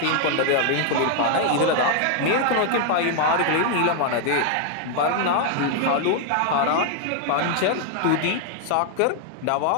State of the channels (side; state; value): both; different; correlation 0.00